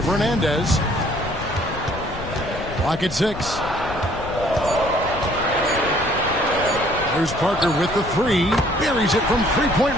Fernandez. Clock at 6. There's Parker with the three. Buries it from three-point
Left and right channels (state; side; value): noise; left; rumble, 11 dB below the sound